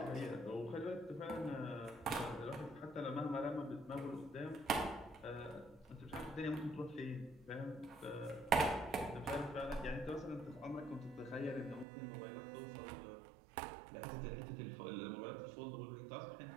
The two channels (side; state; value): left; drops out; at 11.9 s